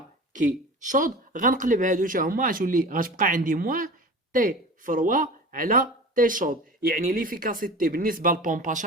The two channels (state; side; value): normal; both; correlation 0.36